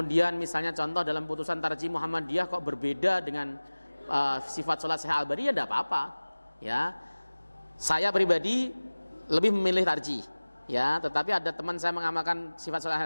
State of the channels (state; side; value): inverted; both; correlation -1.00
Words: misalnya contoh dalam putusan Tarjih Muhammadiyah kok berbeda dengan sifat sholat Syekh Al-Albani, ya tidak apa-apa. Ya, saya pribadi lebih memilih tarjih. Ya, tetapi ada teman saya mengamalkan sifat sholat